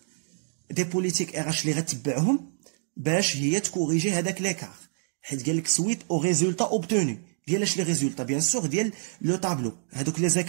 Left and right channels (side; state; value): left; silent; digital silence